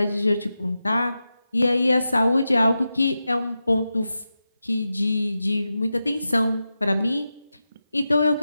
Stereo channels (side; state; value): both; inverted; correlation -0.91